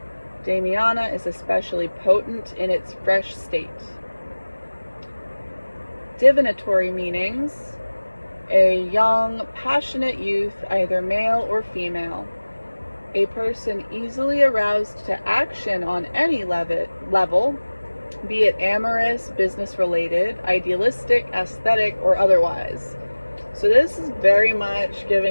Damiana is especially potent in its fresh state. Divinatory meanings: a young, passionate youth, either male or female. A person easily aroused to action on any level, be it amorous, business-related, idealistic, aesthetic, or otherwise. So this is very much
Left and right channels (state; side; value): inverted; both; correlation -1.00